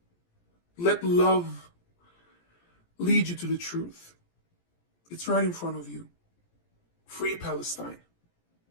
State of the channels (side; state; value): right; late; 17 ms